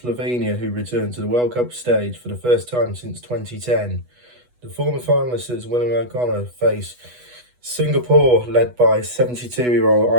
who returned to the World Cup stage for the first time since 2010. The former finalists William O'Connor face Singapore, led by 72-year-old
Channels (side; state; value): left; late; 8.2 ms